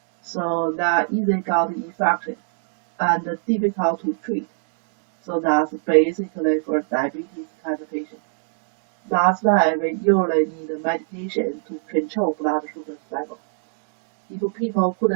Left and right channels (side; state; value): left; silent; digital silence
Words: So that easily got infection and difficult to treat. So that's basically for diabetes kind of patient. That's why we usually need medication to control blood sugar level. If people